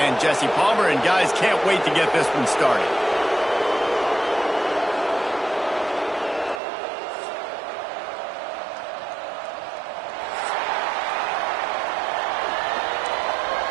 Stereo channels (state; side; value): drops out; left; at 6.6 s